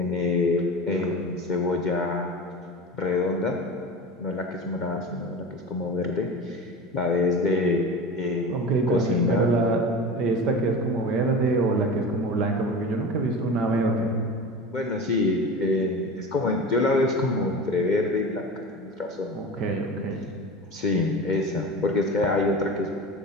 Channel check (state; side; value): normal; both; correlation 0.30